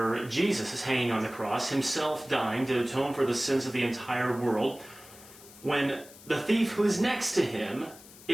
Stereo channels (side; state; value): left; noise; hiss, 20 dB below the sound